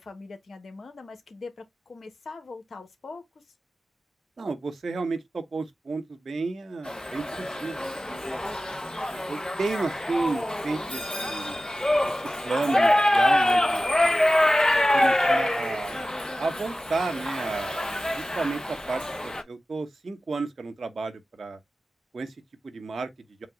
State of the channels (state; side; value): normal; both; correlation 0.95